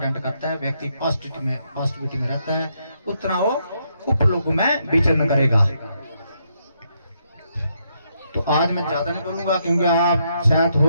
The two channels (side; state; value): both; inverted; correlation -0.77